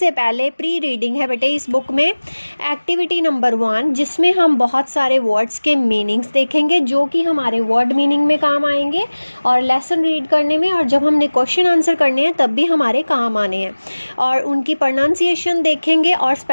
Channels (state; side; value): inverted; both; correlation -1.00